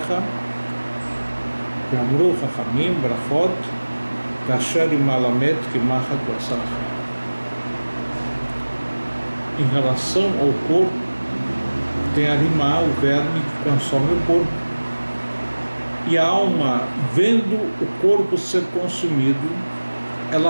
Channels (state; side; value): inverted; both; correlation -1.00